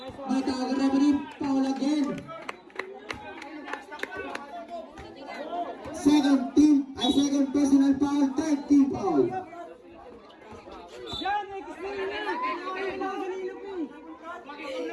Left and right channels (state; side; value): identical; both; correlation 1.00